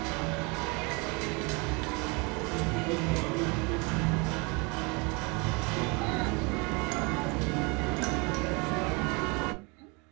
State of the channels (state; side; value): quieter; left; 29.5 dB